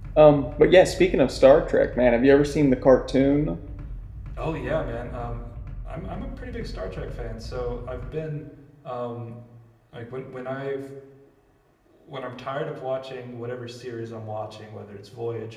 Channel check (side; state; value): both; identical; correlation 1.00